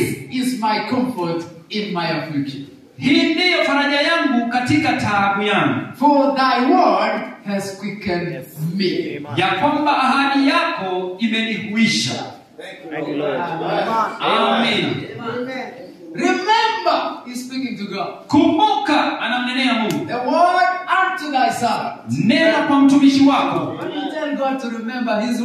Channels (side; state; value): both; identical; correlation 1.00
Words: is my comfort in my affliction. Hii ndiyo faraja yangu katika taabu yangu, For thy word has quickened me. ya kwamba ahadi yako imenihuisha. Thank you, Lord. Amen. Remember, he's speaking to God. Kumbuka, anamnenea Mungu, The word unto thy servant. neno kwa mtumishi wako. When you tell God to remember his